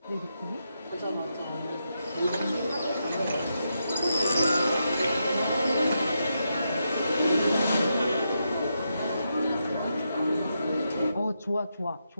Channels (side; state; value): both; inverted; correlation -0.84